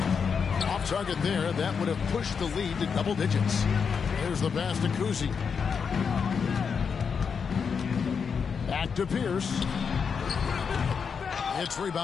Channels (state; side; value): quieter; right; 6.2 dB